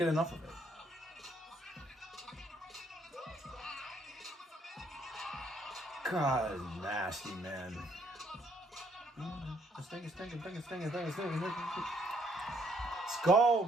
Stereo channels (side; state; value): both; normal; correlation 0.68